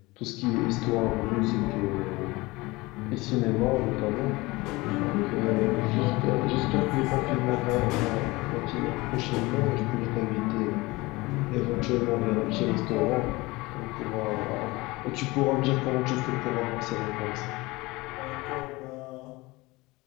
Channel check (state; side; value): quieter; right; 22.2 dB